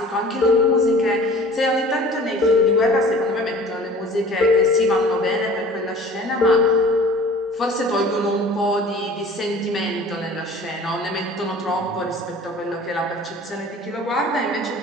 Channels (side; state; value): both; normal; correlation 0.46